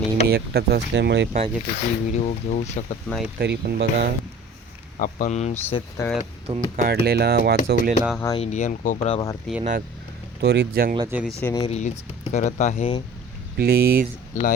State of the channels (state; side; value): normal; both; correlation 0.45